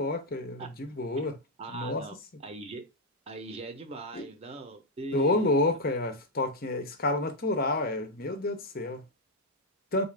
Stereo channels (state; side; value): normal; both; correlation -0.01